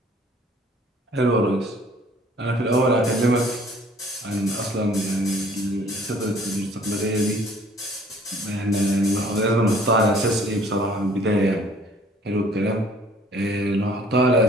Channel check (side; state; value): both; normal; correlation 0.55